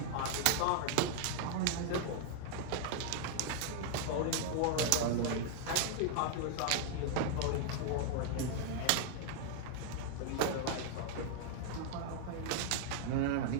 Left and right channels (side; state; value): both; different; correlation 0.00